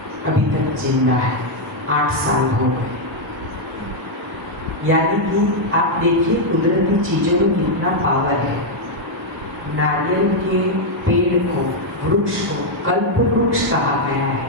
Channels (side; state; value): both; normal; correlation -0.01